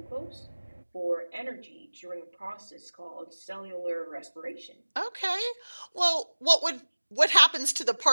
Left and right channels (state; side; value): inverted; both; correlation -1.00